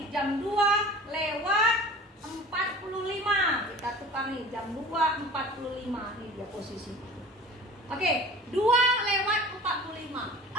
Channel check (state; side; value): normal; both; correlation 0.42